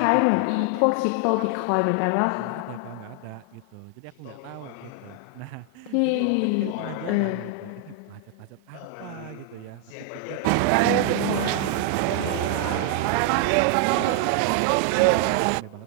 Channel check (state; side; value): different; both; correlation 0.00